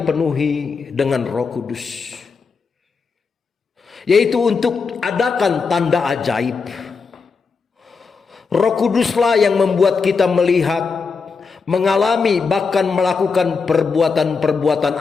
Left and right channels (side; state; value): right; quieter; 5.0 dB